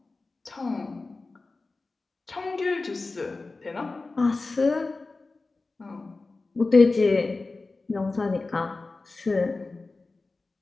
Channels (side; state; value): right; quieter; 3.6 dB